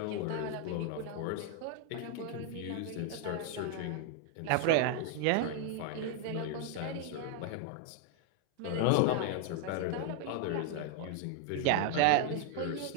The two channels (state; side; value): different; both; correlation 0.00